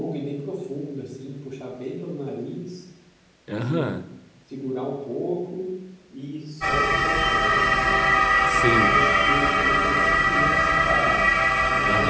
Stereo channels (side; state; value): both; identical; correlation 1.00